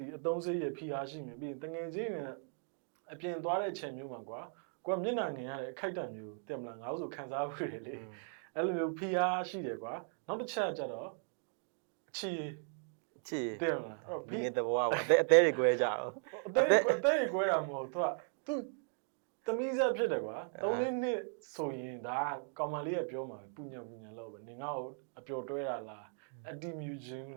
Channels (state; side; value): silent; left; 53 dB below the other